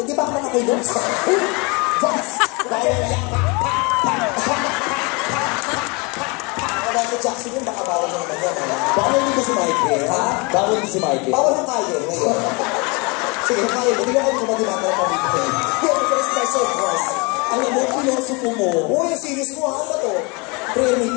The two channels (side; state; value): right; quieter; 29.1 dB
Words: Hindi ba ako nakakilos? Dahil yan. Michael Jackson yun, baka bawal na naman yan. Bawal din ba si Michael? Ha? Bawal din si Michael? Bawal ang kaya ngayon. Sige, kaya mo. Hindi ako kumagimata ng pamilya. Yan, ito is special cross. Alam mo, pilosopo mo. Uy, yung series mo, ano ba to? Prayer